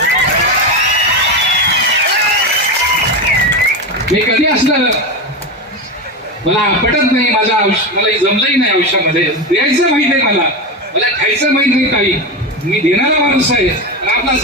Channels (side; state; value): both; normal; correlation 0.17